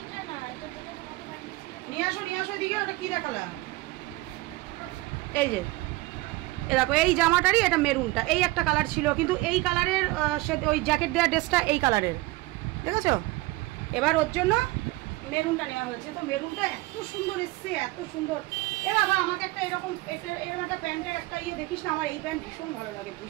না, এটা যেটা তোমাকে পাঠিয়েছি। নিয়ে আসো এদিকে। ওটা কি দেখালাম? এই যে দেখো এই জামাটারই এটা মেরুনটা, এই একটা কালার ছিল, কিন্তু এই কালারের ওই জ্যাকেট দেওয়া ড্রেসটা এই কালারের, দেখেছো? এবার ওর জন্য মেরুনটা নেওয়া হয়েছে। তো মেরুনটা এত সুন্দর এসছে, এত সুন্দর। এ বাবা আমাকে একটা এরকম একটা প্যান্টের একটা ইয়ে দেখিস না, আমার এই প্যান্ট ভীষণ ভালো লাগে,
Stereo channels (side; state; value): left; quieter; 20.8 dB